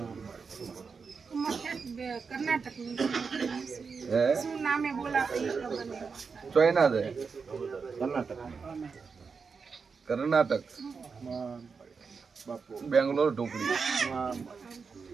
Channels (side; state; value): left; quieter; 5.3 dB